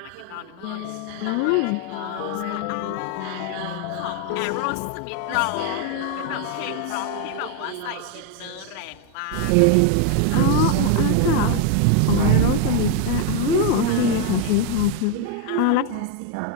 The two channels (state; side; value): different; both; correlation 0.01